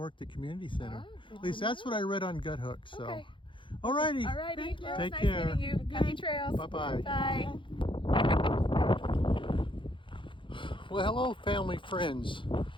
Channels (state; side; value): late; right; 0.24 ms